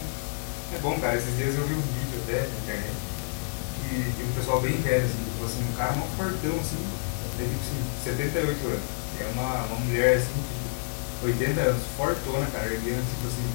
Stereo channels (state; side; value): silent; right; digital silence